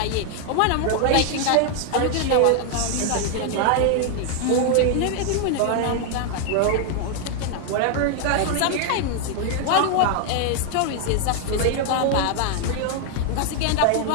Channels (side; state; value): both; different; correlation 0.00